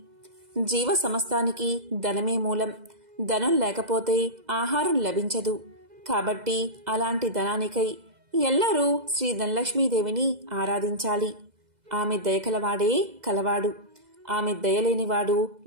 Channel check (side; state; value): left; late; 2.0 ms